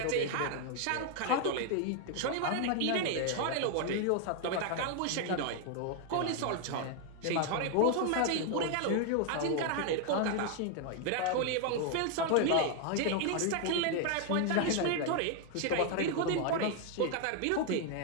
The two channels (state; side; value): different; both; correlation 0.00